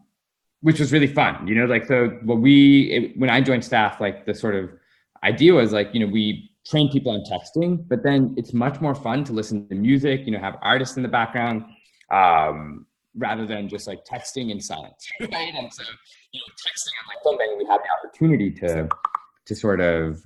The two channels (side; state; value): both; identical; correlation 1.00